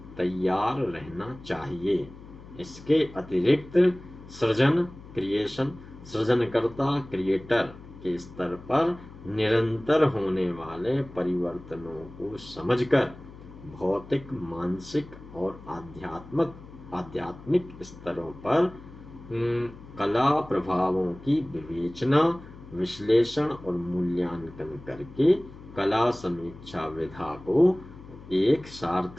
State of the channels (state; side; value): noise; left; hum, 18 dB below the sound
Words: तैयार रहना चाहिए। इसके अतिरिक्त सृजनकर्ता क्रिएटर के स्तर पर निरंतर होने वाले परिवर्तनों को समझकर भौतिक, मानसिक और आध्यात्मिक स्तरों पर कला प्रभावों की विवेचना, विश्लेषण और मूल्यांकन करके कला समीक्षा विधा को एक